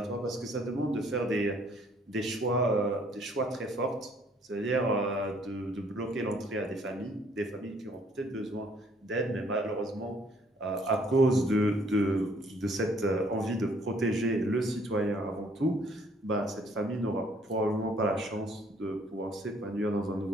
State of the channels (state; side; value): normal; both; correlation 0.62